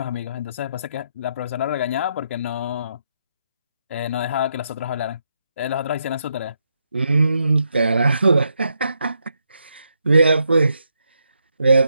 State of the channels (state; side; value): inverted; both; correlation -0.79